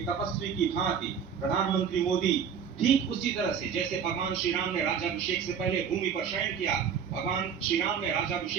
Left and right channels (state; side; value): quieter; left; 7.3 dB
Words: तपस्वी की भांति प्रधानमंत्री मोदी ठीक उसी तरह से जैसे भगवान श्री राम ने राज्याभिषेक से पहले भूमि पर शयन किया, भगवान श्री राम ने